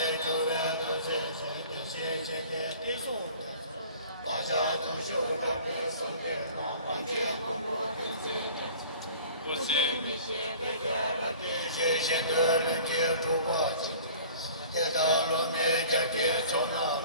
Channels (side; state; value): both; inverted; correlation -0.46